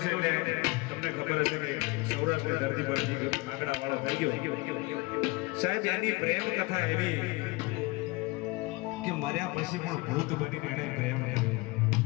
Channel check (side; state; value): right; quieter; 23.7 dB